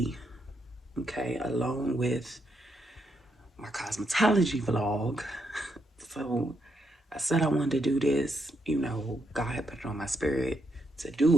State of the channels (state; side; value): normal; both; correlation 0.79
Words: okay, along with my cosmetology vlog. So I said I wanted to do this, you know, God had put it on my spirit to